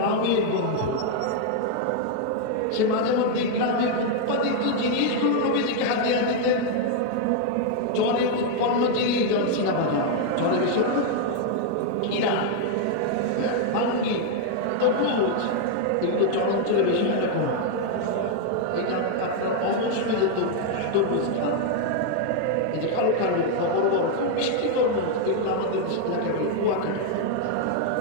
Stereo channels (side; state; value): both; different; correlation 0.00